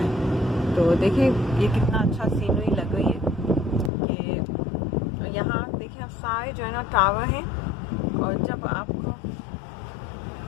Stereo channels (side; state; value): right; drops out; at 3.9 s